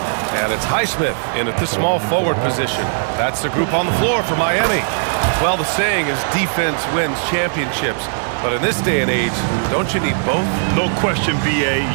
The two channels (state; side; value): silent; left; digital silence